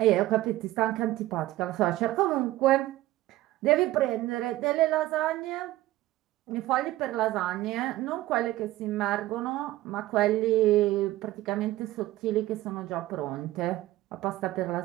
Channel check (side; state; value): left; quieter; 16.3 dB